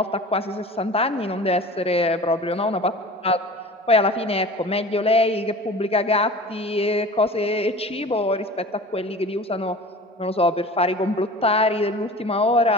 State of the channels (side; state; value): both; normal; correlation 0.39